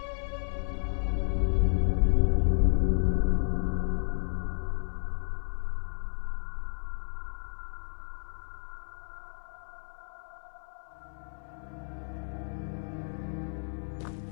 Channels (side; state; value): right; silent; digital silence